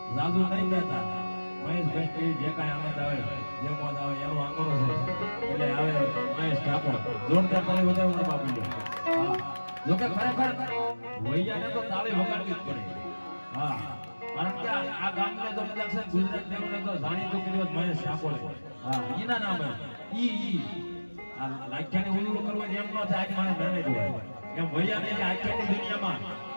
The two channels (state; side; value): inverted; both; correlation -1.00